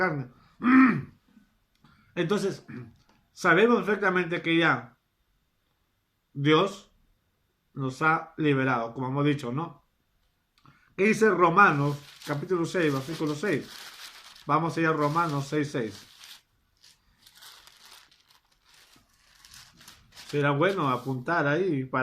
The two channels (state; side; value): identical; both; correlation 1.00